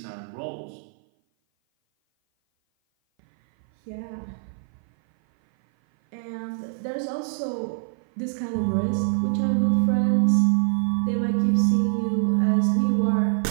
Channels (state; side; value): silent; left; 57 dB below the other